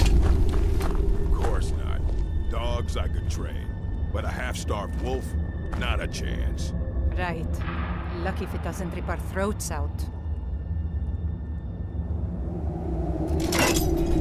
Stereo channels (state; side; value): identical; both; correlation 1.00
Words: I could train, but a half-starved wolf? Not a chance. Right. Lucky if it doesn't rip our throats out.